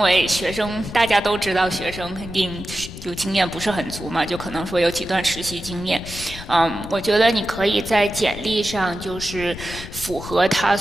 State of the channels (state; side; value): noise; left; rumble, 12 dB below the sound